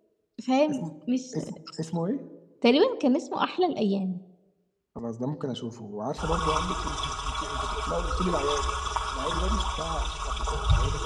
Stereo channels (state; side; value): identical; both; correlation 1.00